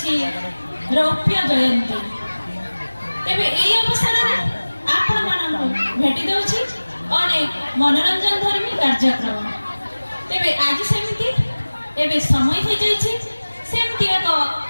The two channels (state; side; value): inverted; both; correlation -1.00